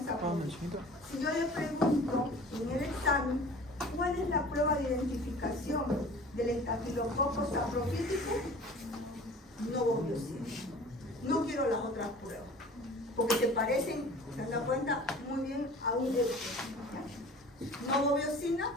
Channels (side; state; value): both; normal; correlation 0.44